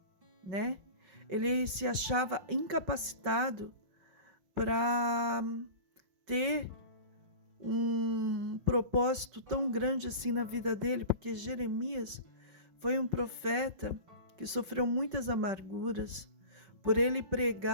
né? Ele se achava incapacitado para ter um propósito tão grande assim na vida dele, porque Jeremias foi um profeta que sofreu muitas amarguras por ele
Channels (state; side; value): late; left; 5.3 ms